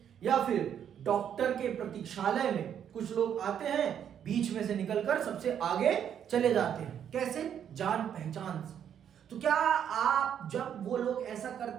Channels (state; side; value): quieter; left; 9.0 dB